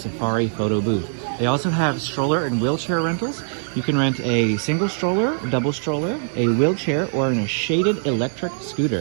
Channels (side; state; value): left; silent; 64 dB below the other